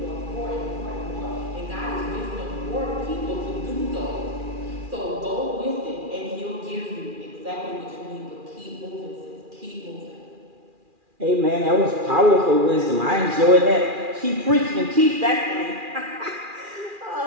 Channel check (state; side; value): late; left; 2.4 ms